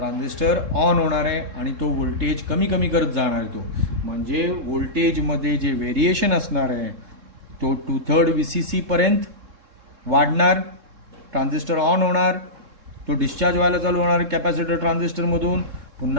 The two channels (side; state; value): left; late; 3.7 ms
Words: ऑन होणार आहे आणि तो व्होल्टेज कमी कमी करत जाणार आहे. तो म्हणजे व्होल्टेजमध्ये जे व्हेरिएशन असणार आहे तो 2/3 VCC पर्यंत वाढणार, ट्रान्झिस्टर ऑन होणार, तो डिस्चार्ज व्हायला चालू होणार कॅपॅसिटर ट्रान्झिस्टरमधून,